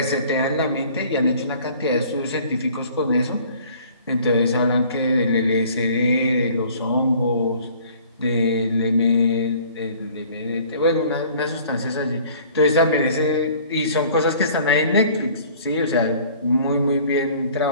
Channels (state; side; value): inverted; both; correlation -0.52